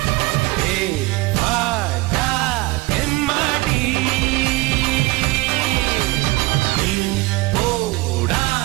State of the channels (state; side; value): quieter; left; 21.8 dB